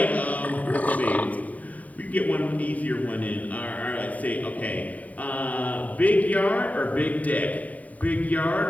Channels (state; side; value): late; right; 0.071 ms